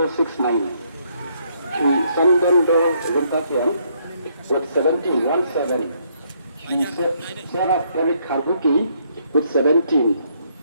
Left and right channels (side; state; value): both; inverted; correlation -0.71